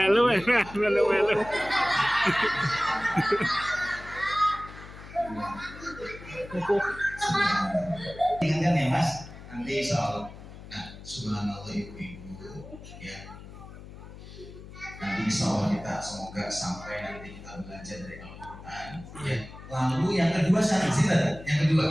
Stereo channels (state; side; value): noise; left; hum, 15 dB below the sound